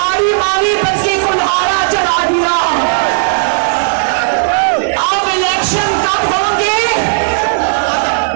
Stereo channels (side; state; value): left; silent; 70 dB below the other